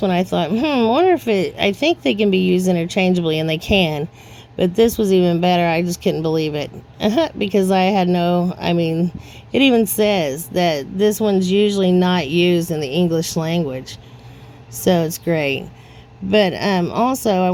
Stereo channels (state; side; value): identical; both; correlation 1.00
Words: one, I thought, I wonder if I think they can be used interchangeably, and they can. But this was even better. I just couldn't believe it. Because it even says that this one's usually not used in the English language. So it's great. But also, I